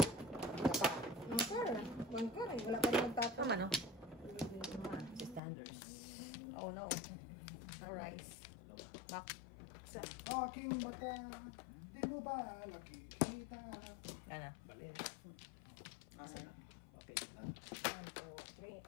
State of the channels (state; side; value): drops out; right; at 5.4 s